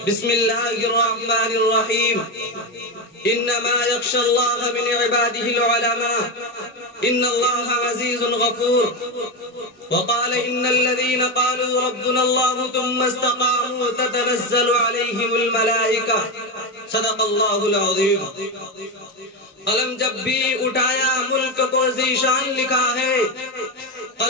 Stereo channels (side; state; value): both; normal; correlation 0.13